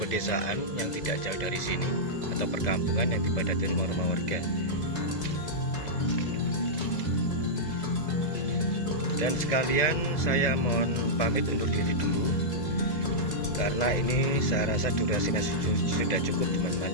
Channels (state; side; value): late; right; 2.0 ms